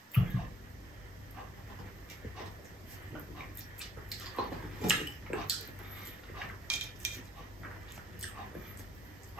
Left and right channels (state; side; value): normal; both; correlation 0.64